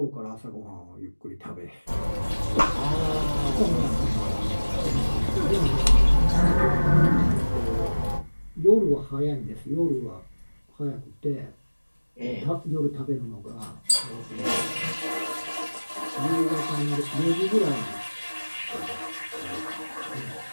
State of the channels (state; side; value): inverted; both; correlation -1.00